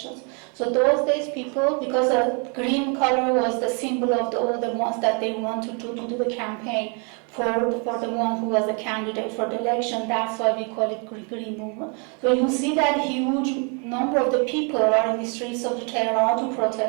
So those days people, because the green color was the symbol of all the ones that they wanted to do the campaign for the one who was the candidate for the election, that's why we call it Green Movement. So you see that huge number of the people are in the streets of Tehran to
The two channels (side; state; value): left; quieter; 36.6 dB